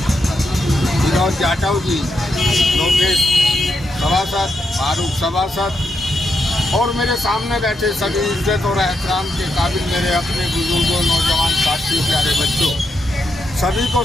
जाटव जी, लोकेश सभासद, फारूक सभासद और मेरे सामने बैठे सभी इज्जत और एहतराम के काबिल मेरे अपने बुजुर्गों, नौजवान साथियों, प्यारे बच्चों, सभी को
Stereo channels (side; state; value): both; normal; correlation 0.82